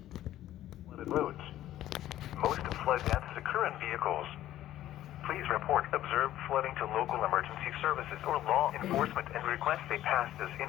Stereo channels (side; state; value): right; quieter; 13.3 dB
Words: Flooded roads. Most flood deaths occur in vehicles. Please report observed flooding to local emergency services or law enforcement and request they pass this